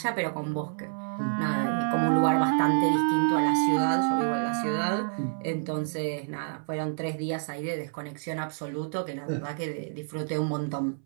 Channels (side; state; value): left; silent; 59 dB below the other